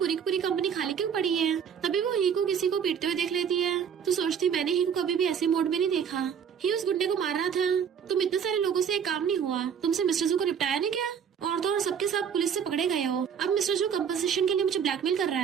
की पूरी कंपनी खाली क्यों पड़ी है। तभी वो ही को किसी को पीटते हुए देख लेती है तो सोचती मैंने ही को कभी भी ऐसे मोड में नहीं देखा। ही उस गुंडे को मार रहा था। तुम इतने सारे लोगों से एक काम नहीं हुआ, तुमसे मिस्टर जू को निपटाया नहीं क्या? और तो और सबके सब पुलिस से पकड़े गए हो। अब मिस्टर जू कंपनसेशन के लिए मुझे ब्लैकमेल कर रहा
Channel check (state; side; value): quieter; left; 7.6 dB